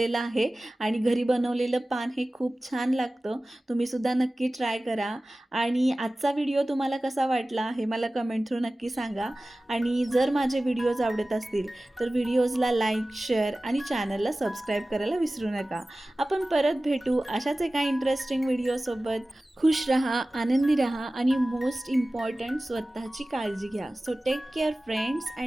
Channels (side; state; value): both; normal; correlation 0.97